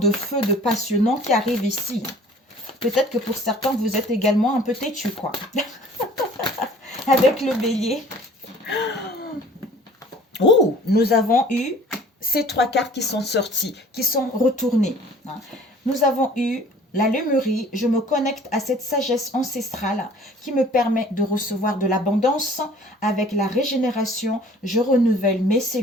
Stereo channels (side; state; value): both; normal; correlation 0.50